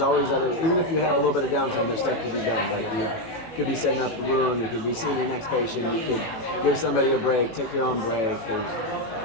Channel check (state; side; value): late; right; 18 ms